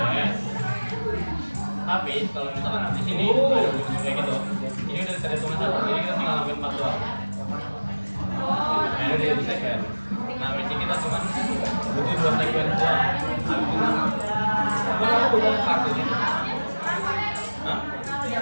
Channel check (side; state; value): both; inverted; correlation -1.00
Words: Tapi kalau misalkan di sini ada bunyi kayak gitu, ini udah saya tulis satu, ini kita tinggal ngambil 4 doang. Nah, ini dia sequence. Nah, basic kita cuma butuh 2 sequence doang. Kamu bukan kartunya? Hah?